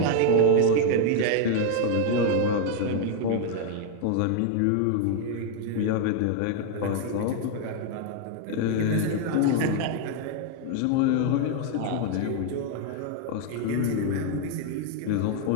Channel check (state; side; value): different; both; correlation 0.01